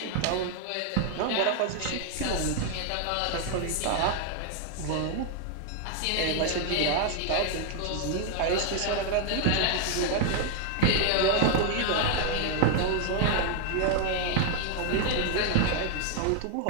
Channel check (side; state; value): both; different; correlation 0.00